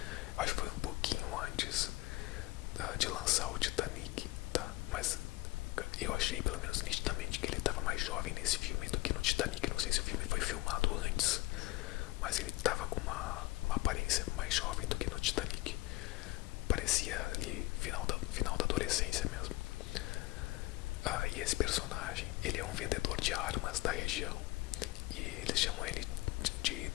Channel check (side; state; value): right; quieter; 20.0 dB